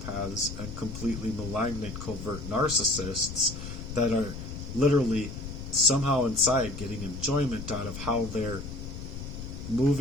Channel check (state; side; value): noise; left; rumble, 8 dB below the sound